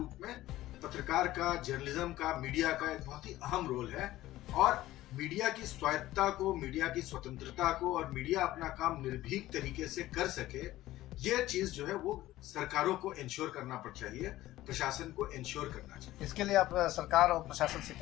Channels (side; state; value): right; quieter; 15.7 dB